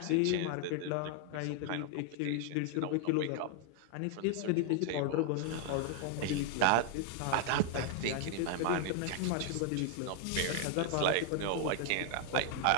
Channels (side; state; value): both; different; correlation 0.00